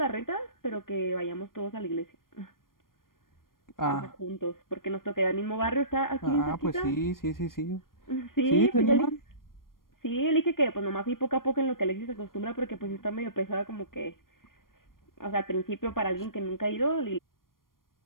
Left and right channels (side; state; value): right; late; 0.91 ms